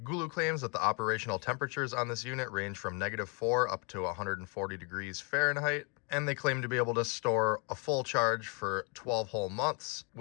GOOLOO claims that the operational temperatures on this unit range from -4 up to 140 degrees Fahrenheit, and they claim to be able to store a full charge for 12 whole months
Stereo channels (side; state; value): right; quieter; 33.9 dB